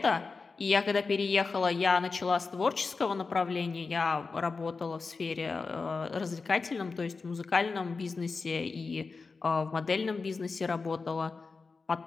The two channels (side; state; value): right; quieter; 4.4 dB